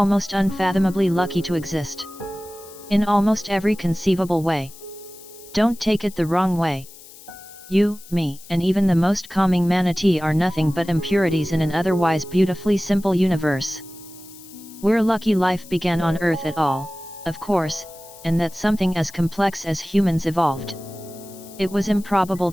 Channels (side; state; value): left; noise; hiss, 20 dB below the sound